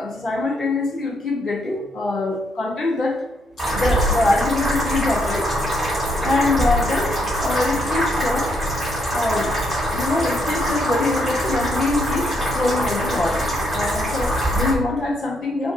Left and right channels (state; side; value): normal; both; correlation 0.75